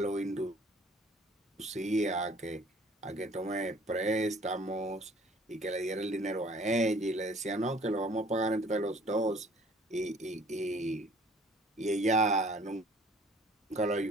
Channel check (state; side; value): normal; both; correlation 0.54